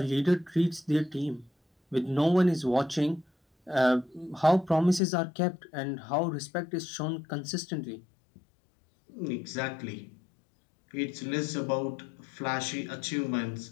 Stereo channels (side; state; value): right; drops out; at 5.0 s